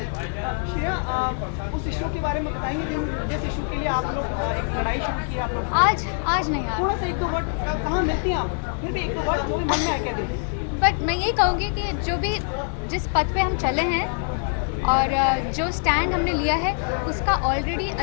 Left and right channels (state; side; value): silent; right; 56 dB below the other